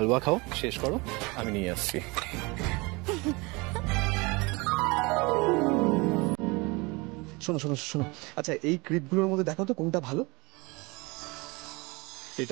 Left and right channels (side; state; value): left; quieter; 25.9 dB